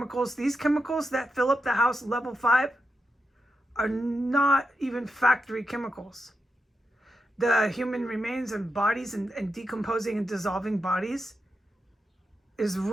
These chemicals that fill up the house level 5 are not even factory chemicals. The human remains and bodies and decomposing and dissolving bodies is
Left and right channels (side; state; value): both; normal; correlation 0.86